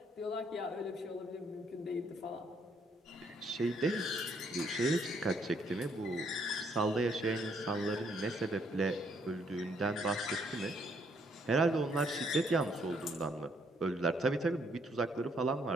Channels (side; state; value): both; normal; correlation 0.69